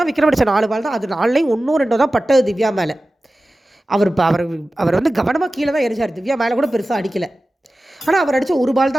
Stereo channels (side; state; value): both; normal; correlation 0.95